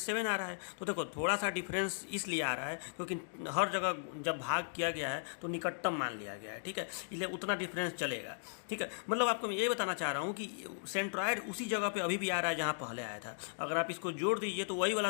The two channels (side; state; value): right; silent; digital silence